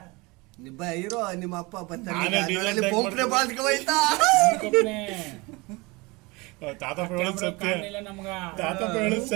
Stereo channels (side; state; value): left; quieter; 25.1 dB